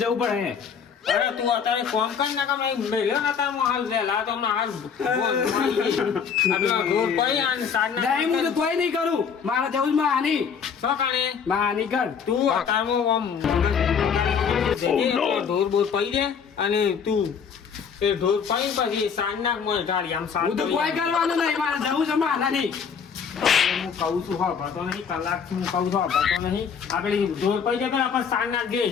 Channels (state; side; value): quieter; right; 6.7 dB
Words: જવું પડે. અરે તું અત્યારે કોમ કઈ ના કામ મેલ્યો ને તાર હાલ વહેલા તો હમણાં હાલ ઢોર પડી અને સાંજ નહીં હું તો કોઈ નહીં કરું. મારે જવું જ હાની. શું કાણે હાની કર તું અત્યારમાં ઢોર બોર પડી દે અને તું એ ઢોર પડી પછી સાંજ નાખ મને ઢાળી આમ હું તો કોઈ કરવાનું નહીં. મારે જવું છે હાની. હું કહું છું હા ભરતો નહીં કલાકથી હું કહું છું હા ભરતો નહીં આપણે ઢોર પડી જાય આપણે સાંજ નાખ દે